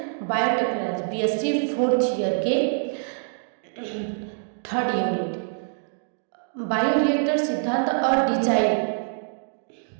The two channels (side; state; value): left; silent; digital silence